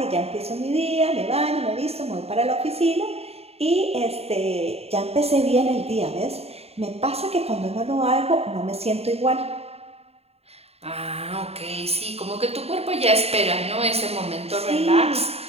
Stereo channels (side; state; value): left; late; 0.30 ms